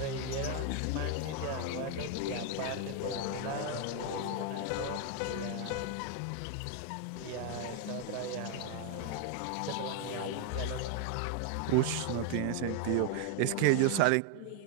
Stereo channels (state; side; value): different; both; correlation 0.00